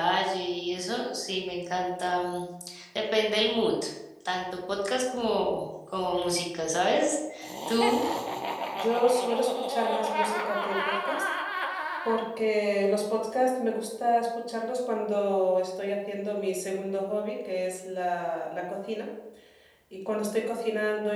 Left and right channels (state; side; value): identical; both; correlation 1.00